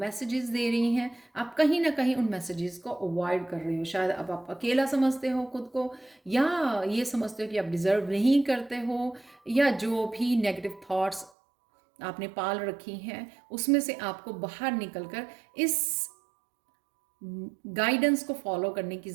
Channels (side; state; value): left; drops out; at 11.3 s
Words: दे रही हैं। आप कहीं ना कहीं उन मैसेजेस को अवॉइड कर रहे हो। शायद अब आप अकेला समझते हो खुद को, या ये समझते हो कि आप डिजर्व नहीं करते हो, या जो भी नेगेटिव थॉट्स आपने पाल रखी हैं उसमें से आपको बाहर निकलकर इस गाइडेंस को फॉलो करने की